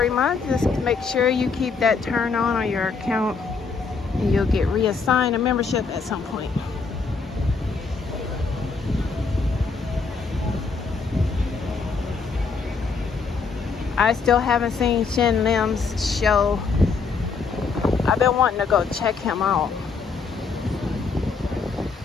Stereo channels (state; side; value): quieter; right; 4.8 dB